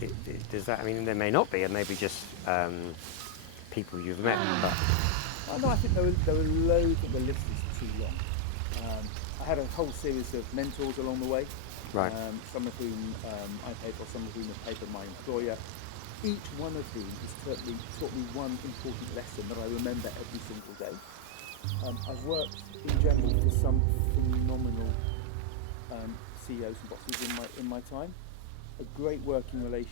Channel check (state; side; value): different; both; correlation 0.00